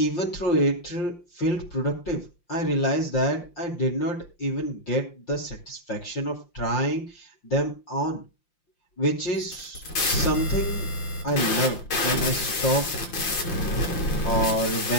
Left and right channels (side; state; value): right; late; 5.7 ms